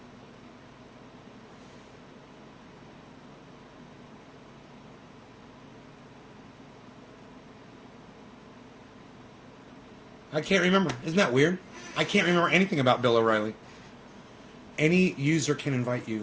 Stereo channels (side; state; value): both; identical; correlation 1.00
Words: I can't remember. Isn't that weird? I can't remember anything about Bill O'Reilly. Any user can invite you.